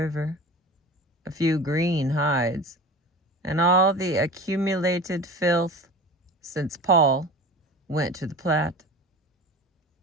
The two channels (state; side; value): normal; both; correlation 0.35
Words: a few green hides, and all the accumulated filth since Paul went to the Platte.